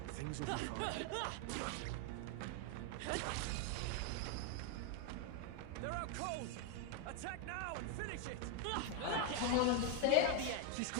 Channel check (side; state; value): both; different; correlation 0.01